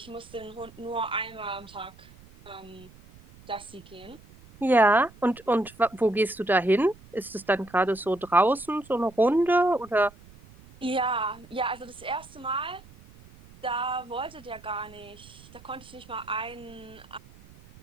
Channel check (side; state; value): right; noise; rumble, 23 dB below the sound